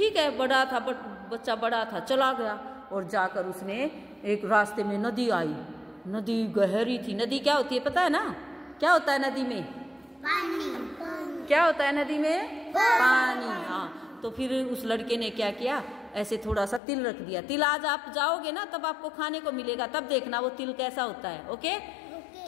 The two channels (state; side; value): drops out; right; at 16.8 s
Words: है। बच्चा बड़ा था, चला गया, और जाकर उसने एक रास्ते में नदी आई। नदी गहरी थी। नदी क्या होती है पता है ना? क्या होता है नदी में? पानी। क्या होता है नदी में? पानी। हाँ। तो फिर उस लड़के ने क्या किया, ऐसे थोड़ा सा तिल रख दिया। तिल आज आप जाओगे ना तब आपको खाने को मिलेगा, तब देखना वो तिल कैसा होता है। ओके।